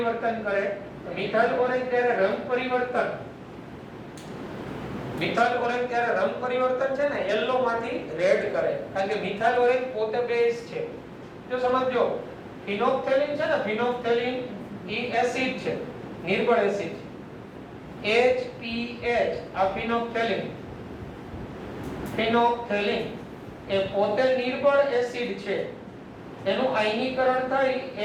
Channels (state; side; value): identical; both; correlation 1.00